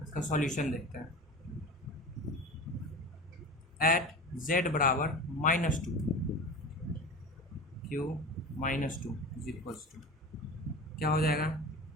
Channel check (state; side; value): normal; both; correlation 0.32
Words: इसका सॉल्यूशन देखते हैं। एट z बराबर -2 q -2 इज इक्वल्स टू क्या हो जाएगा,